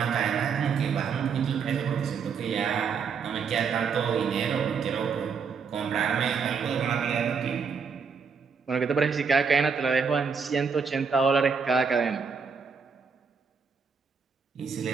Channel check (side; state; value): left; quieter; 5.8 dB